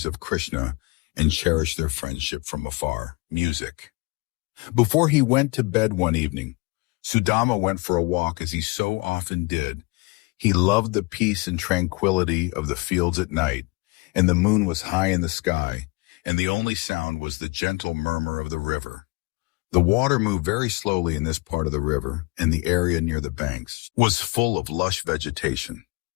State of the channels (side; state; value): right; quieter; 26.4 dB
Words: of Krishna and cherish their friendship from afar. Music. Before he went to bed one evening, Sudama went for a walk as he so often did. He loved the peace and tranquility of the fields at night, and the moon was high in the sky, and the only sound was the gentle murmur of the river. The water moved very slowly in this part of the river, and the area near the banks was full of lush vegetation.